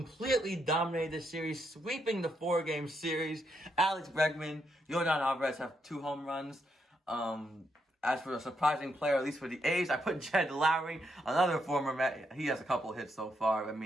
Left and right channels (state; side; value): normal; both; correlation 0.79